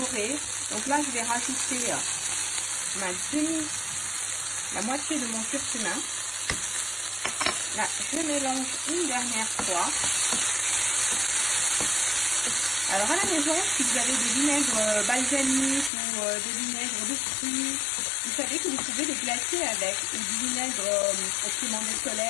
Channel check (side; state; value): right; drops out; at 15.9 s